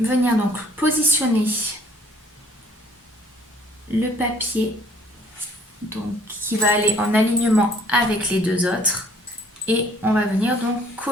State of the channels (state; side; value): normal; both; correlation 0.58